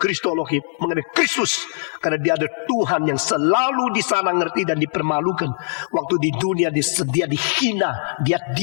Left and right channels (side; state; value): right; silent; 64 dB below the other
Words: mengenai Kristus, karena dia ada Tuhan yang selalu di sana ngerti dan dipermalukan. Waktu di dunia dia dihina, dia